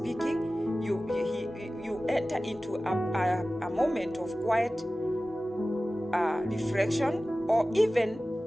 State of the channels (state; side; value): normal; both; correlation 0.96